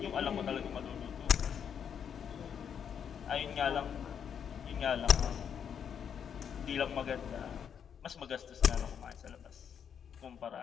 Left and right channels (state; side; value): quieter; right; 7.9 dB